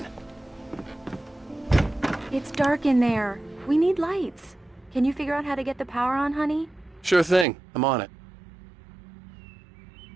on. It's dark in there. We need lights. Can you figure out how to get the power on, honey? Sure thing. I'm on it.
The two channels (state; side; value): drops out; left; at 7.5 s